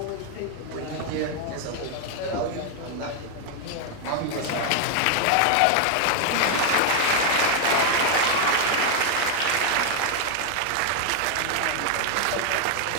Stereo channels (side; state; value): both; different; correlation 0.00